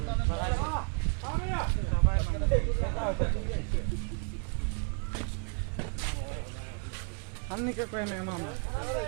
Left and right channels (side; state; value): left; quieter; 36.2 dB